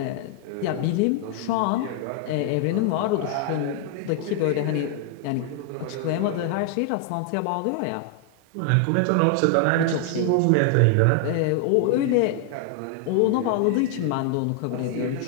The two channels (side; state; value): both; different; correlation 0.00